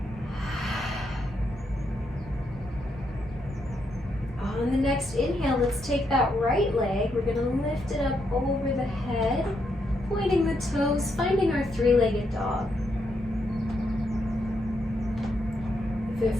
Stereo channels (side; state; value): both; normal; correlation 0.79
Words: On the next inhale, let's take that right leg. We're going to lift it up over the head, pointing the toes, finding our three-legged dog. If it